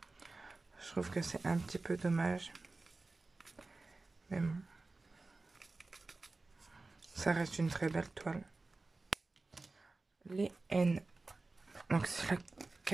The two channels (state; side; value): quieter; left; 3.5 dB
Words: Je trouve que c'est un petit peu dommage. Mais bon, ça reste une très belle toile. Les N. Donc c'est la